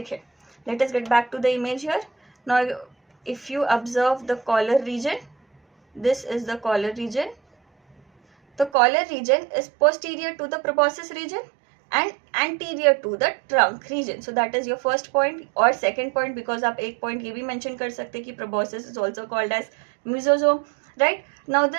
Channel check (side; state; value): left; drops out; at 8.7 s